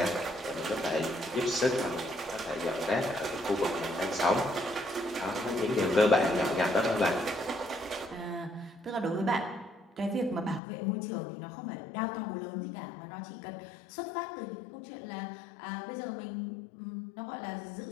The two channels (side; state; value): right; drops out; at 10.6 s